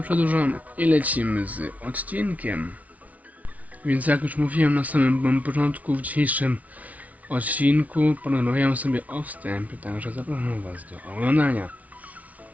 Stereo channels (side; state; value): left; late; 0.070 ms